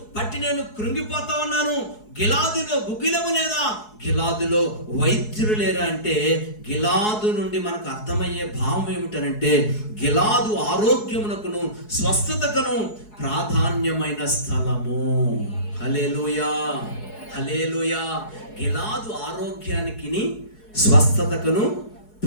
పట్టి నేను కృంగిపోతా ఉన్నాను. గిలాదులో గుగ్గిలము లేదా? గిలాదులో వైద్యులు లేరా అంటే, గిలాదు నుండి మనకు అర్థమయ్యే భావం ఏమిటనంటే, గిలాదు ఆరోగ్యమునకును స్వస్థతకును ప్రాధాన్యమైన స్థలము. హల్లెలూయా, హల్లెలూయా. గిలాదు ఆరోగ్యానికి స్వస్థతకును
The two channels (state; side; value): late; right; 4.7 ms